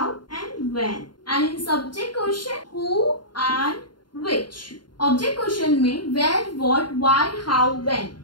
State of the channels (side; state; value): right; late; 0.71 ms